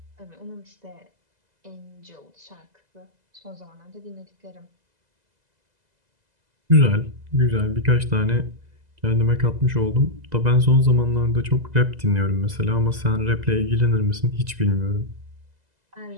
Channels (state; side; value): late; left; 2.0 ms